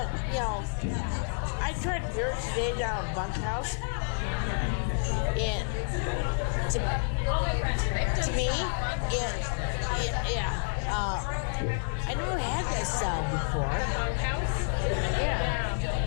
you know, I tried beer today down at Bunkhouse, and to me, I never had that style before. Yeah.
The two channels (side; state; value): right; silent; digital silence